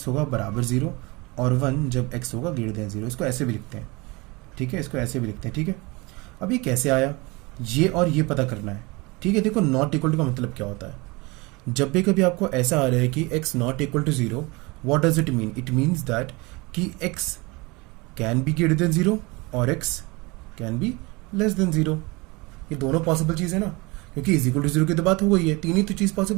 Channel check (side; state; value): left; quieter; 25.2 dB